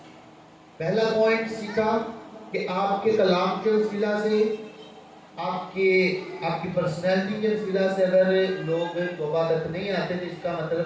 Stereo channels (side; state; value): both; identical; correlation 1.00